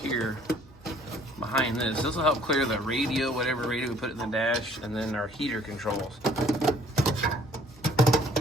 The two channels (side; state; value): right; noise; hum, 26 dB below the sound